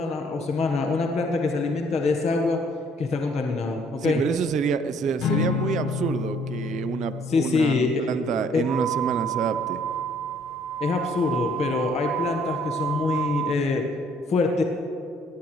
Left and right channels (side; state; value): both; normal; correlation 0.62